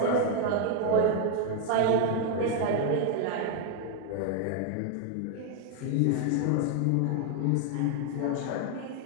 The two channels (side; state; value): both; different; correlation 0.00